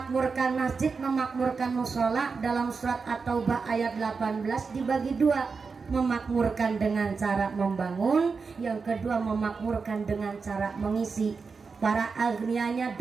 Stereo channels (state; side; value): quieter; left; 4.9 dB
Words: masjid, memakmurkan mushola dalam surat At-Taubah ayat 18 dibagi dua. Memakmurkan dengan cara membangun, yang kedua memakmurkan dengan cara mengisi. Para agnianya